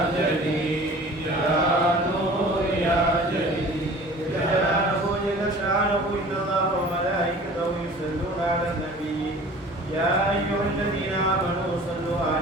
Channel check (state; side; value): normal; both; correlation 0.44